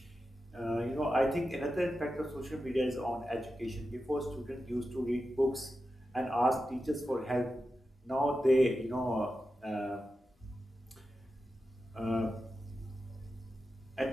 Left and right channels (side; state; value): both; normal; correlation 0.91